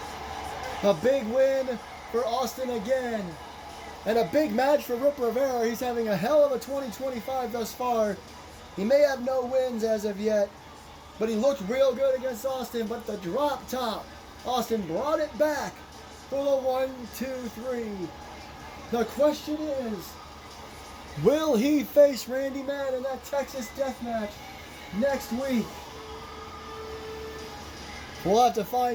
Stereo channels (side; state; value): both; identical; correlation 1.00